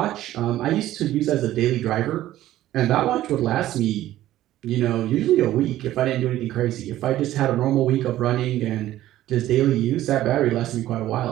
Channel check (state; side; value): quieter; left; 14.1 dB